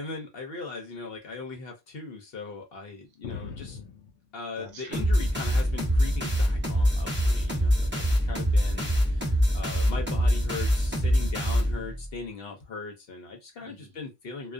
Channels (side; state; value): both; normal; correlation 0.86